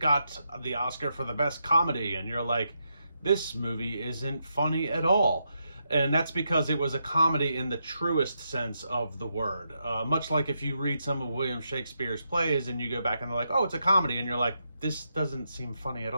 the Oscar for the best comedy, and you're like, this movie isn't funny at all. And that's because it was a comedy in the truest sense of the word. Much like if you read some of William Shakespeare's plays and you go back and they're like, oh, it's a comedy. And you're like, this doesn't seem funny at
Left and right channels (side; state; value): both; inverted; correlation -0.82